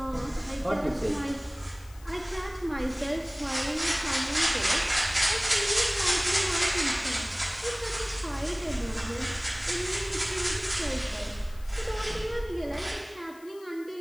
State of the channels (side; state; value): left; noise; hiss, 24 dB below the sound